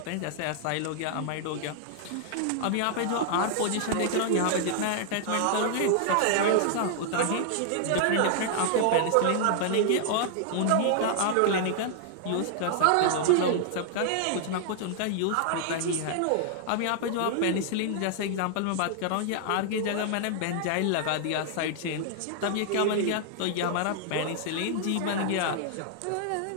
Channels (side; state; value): both; different; correlation -0.01